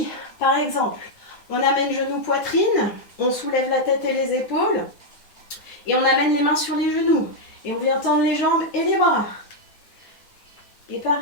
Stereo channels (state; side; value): late; right; 9.4 ms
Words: par exemple, on amène genou poitrine, on soulève la tête et les épaules, et on amène les mains sur les genoux. Et on vient tendre les jambes et les bras. Et